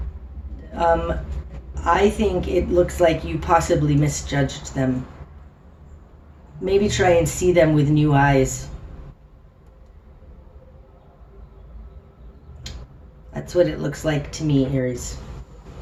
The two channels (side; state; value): both; identical; correlation 1.00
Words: I think it looks like you possibly misjudged them. Maybe try and see them with new eyes. That's what it looks like to me, Aries.